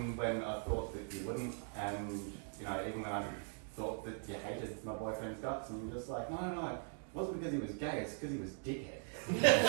when I thought that you wouldn't, and even when I thought that you hated my boyfriend's guts, and you're just like, no, it wasn't because he was gay, it's because he was dickhead.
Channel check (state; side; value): silent; left; 51 dB below the other